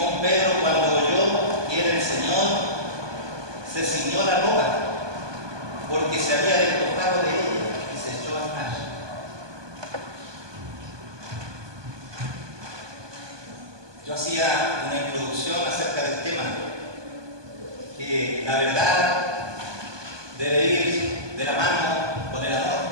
Pedro, cuando oyó que era el Señor, se ciñó la ropa, porque se había despojado de ella y se echó al mar. Yo hacía una introducción acerca del tema, que la verdad debe ir de la mano con el amor,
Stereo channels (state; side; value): late; left; 1.2 ms